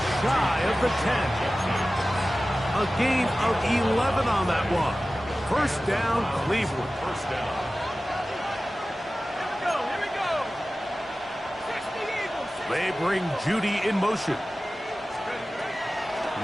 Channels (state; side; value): normal; both; correlation 0.96